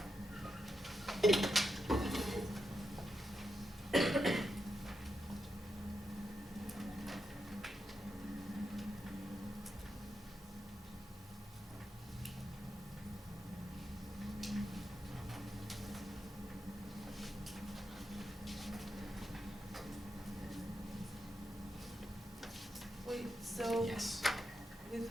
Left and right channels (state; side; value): normal; both; correlation 0.85